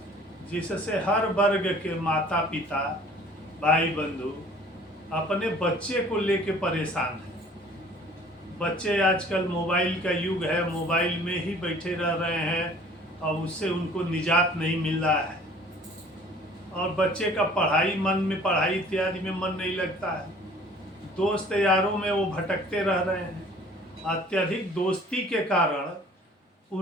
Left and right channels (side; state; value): both; normal; correlation 0.51